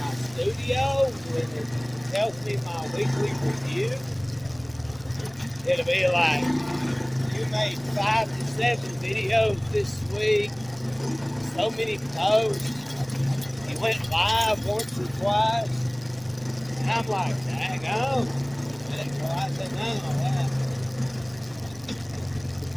my studio, when it tells me my weekly review, it'll be like, you made 5 to 7 videos this week, so many posts, you went live once or twice, and I'm like, dang on, I didn't realize that none of that.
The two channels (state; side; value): noise; right; rumble, 24 dB below the sound